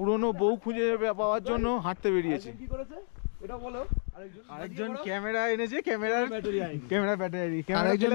বউ খুঁজে পাওয়ার জন্য হাঁটতে বেরিয়েছে। আরেকজন ক্যামেরা এনেছে, ক্যামেরা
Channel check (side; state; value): right; silent; digital silence